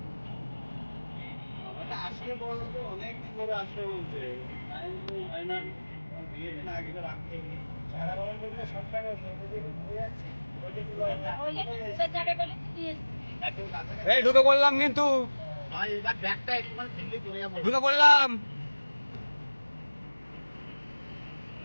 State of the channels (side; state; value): both; inverted; correlation -1.00